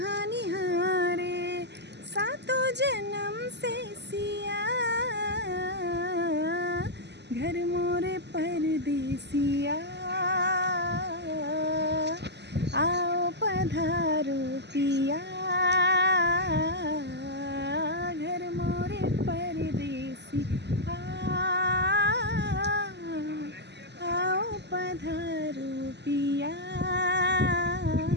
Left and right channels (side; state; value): left; late; 0.50 ms